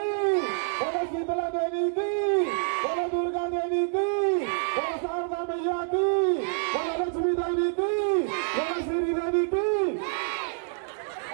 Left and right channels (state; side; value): silent; left; digital silence